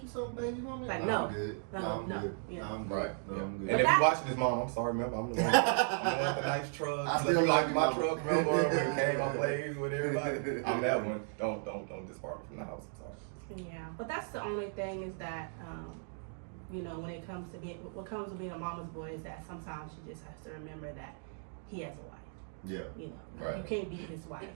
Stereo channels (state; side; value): silent; left; 54 dB below the other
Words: you something, baby? You want me? Like, I'm no. good. No, I'm no. good. Yeah. No, I'm good. Right. No, Yeah. I'm And good. if that- you watching this, mom, I'm sorry, remember, I'm the one with the nice truck. I Look still like love my you, truck, mama. remember when it came on plays with everybody. I'm that one. Don't disbark me from the house. I'm sorry. Yeah, but that's the only thing is that you know, when it comes to being a mama's boy is that sometimes she just has to remember that he has a wife. Yeah. You know, Right. you can't beat his wife.